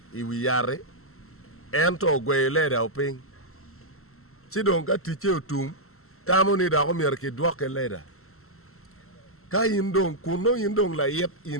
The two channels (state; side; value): late; right; 0.63 ms